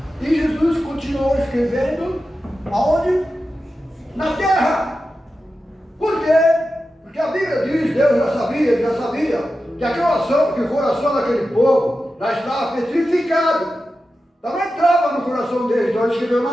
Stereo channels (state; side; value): normal; both; correlation 0.92